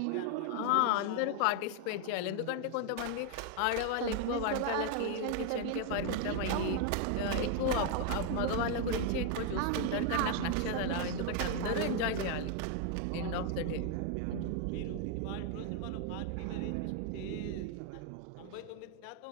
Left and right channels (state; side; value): different; both; correlation 0.01